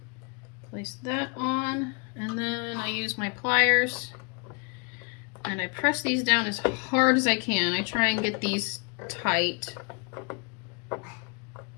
Place that on, and then I use my pliers and I press these down as hard as I can. I try and get these tight,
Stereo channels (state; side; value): quieter; right; 33.9 dB